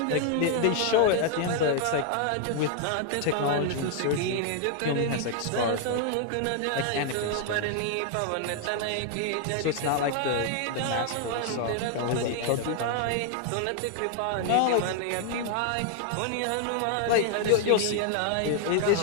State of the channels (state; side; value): different; both; correlation 0.00